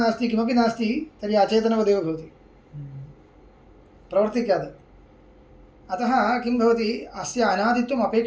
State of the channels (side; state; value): both; identical; correlation 1.00